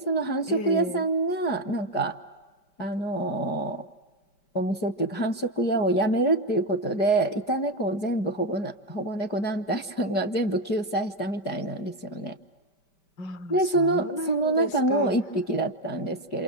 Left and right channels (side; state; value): right; late; 5.1 ms